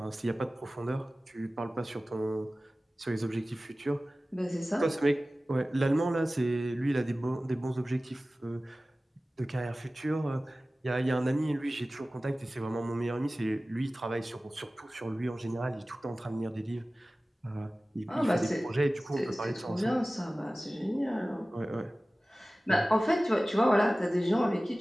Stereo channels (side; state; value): both; normal; correlation 0.97